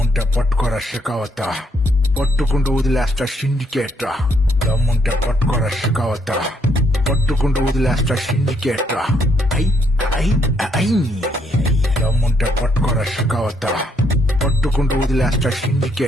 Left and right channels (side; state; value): both; normal; correlation 0.72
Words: పట్టుకోరా షికావత, పట్టుకుంటూ వదిలేస్తా సిండికేట్. దమ్ముంటే పట్టుకోరా షికావత, పట్టుకుంటూ వదిలేస్తా సిండికేట్. ఐ ఐ ఐ దమ్ముంటే పట్టుకోరా షికావత, పట్టుకుంటూ వదిలేస్తా